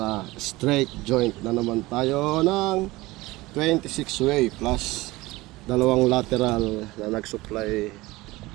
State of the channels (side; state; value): left; quieter; 20.1 dB